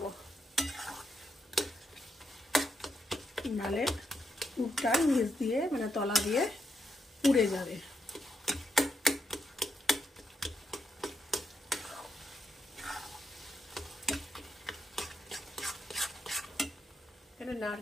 নালে পুরটা নিচ দিয়ে মানে তলা দিয়ে পুড়ে যাবে। এখানে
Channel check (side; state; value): both; normal; correlation 0.81